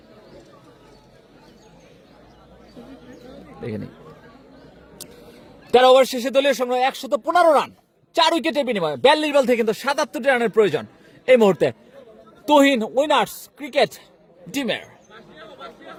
দেখে নিই 13 ওভার শেষে দলীয় সংগ্রহ 115 রান, 4 উইকেটের বিনিময়ে 42 বল থেকে কিন্তু 77 রানের প্রয়োজন এই মুহূর্তে তুহিন উইনার্স ক্রিকেট টিমের।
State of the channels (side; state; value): both; identical; correlation 1.00